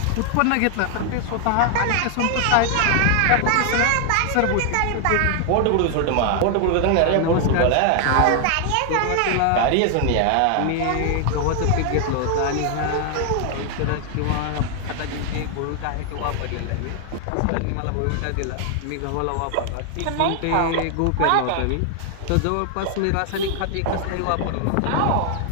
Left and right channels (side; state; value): both; different; correlation 0.00